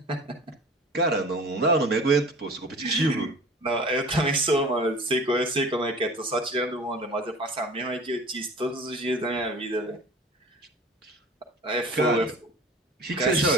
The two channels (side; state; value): both; normal; correlation 0.42